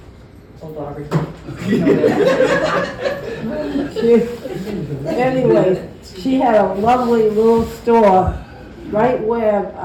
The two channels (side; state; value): both; identical; correlation 1.00